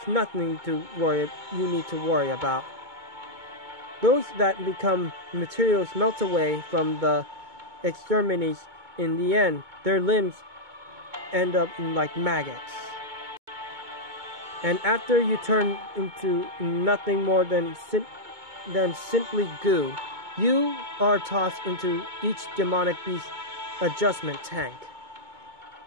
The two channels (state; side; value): late; left; 2.2 ms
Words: nothing you need to worry about. Those that become materials melt away from the extremities. In the end, their limbs end up like maggots. And after you turn into nothing more than simply goo, You are tossed into each demonic beast adjustment tank.